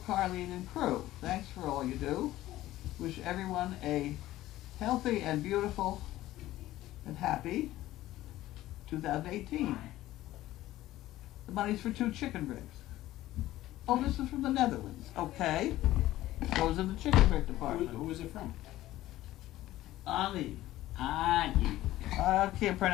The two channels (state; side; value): quieter; right; 15.4 dB